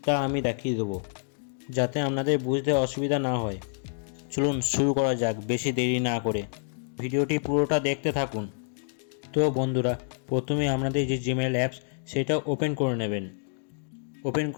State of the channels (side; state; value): right; silent; digital silence